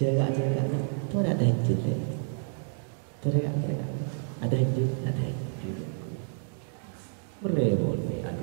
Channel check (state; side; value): silent; left; 58 dB below the other